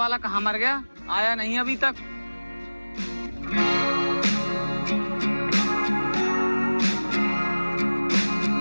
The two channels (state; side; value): inverted; both; correlation -1.00